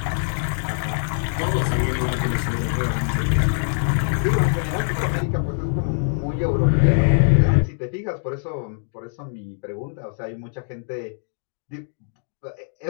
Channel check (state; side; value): silent; right; digital silence